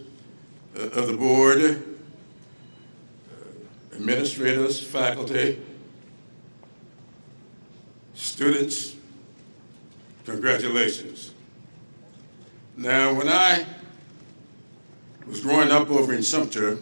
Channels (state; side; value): inverted; both; correlation -1.00